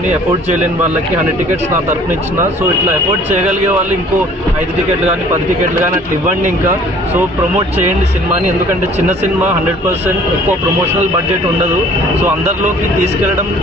ఎఫోర్డ్ చేయలేని వాళ్ళకి 100 టికెట్స్ నా తరఫున ఇచ్చిన. సో ఇట్లా ఎఫోర్డ్ చేయగలిగే వాళ్ళు ఇంకో 5 టికెట్లు కానీ 10 టికెట్లు కానీ అట్లా ఇవ్వండి. ఇంకా సో ప్రమోట్ చేయండి సినిమాని. ఎందుకంటే చిన్న సినిమా 100% ఎక్కువ ప్రమోషనల్ బడ్జెట్ ఉండదు. సో అందరిలోకి తీసుకెళ్లడం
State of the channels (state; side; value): normal; both; correlation 0.53